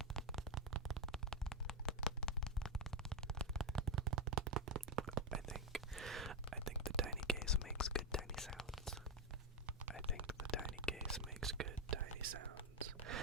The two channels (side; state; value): both; normal; correlation 0.04